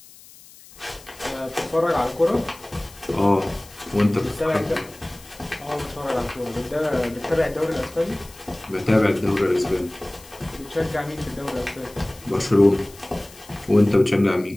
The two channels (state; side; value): noise; left; hiss, 22 dB below the sound